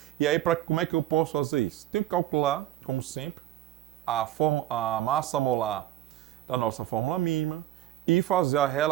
E aí, como é que eu posso fazer isso? Tenho que calcular, como sempre, a massa molar da nossa fórmula mínima e fazer a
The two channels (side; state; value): left; quieter; 13.3 dB